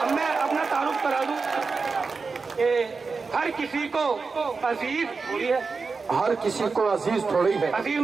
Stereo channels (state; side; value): quieter; left; 4.5 dB